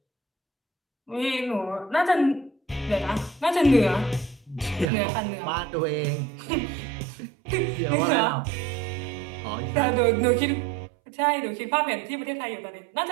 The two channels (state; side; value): drops out; left; at 4.9 s